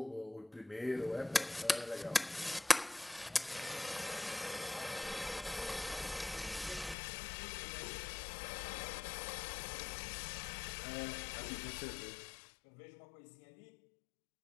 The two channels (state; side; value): drops out; right; at 7.0 s